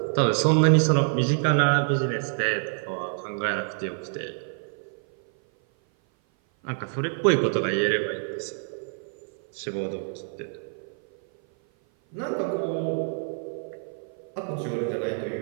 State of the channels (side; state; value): left; silent; 56 dB below the other